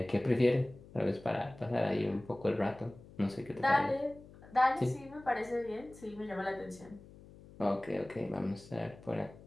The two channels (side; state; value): left; noise; hum, 20 dB below the sound